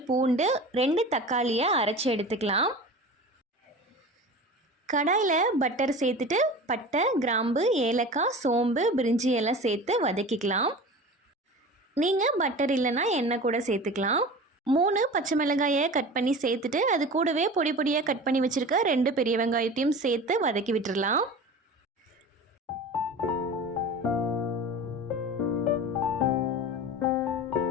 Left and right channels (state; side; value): normal; both; correlation 0.35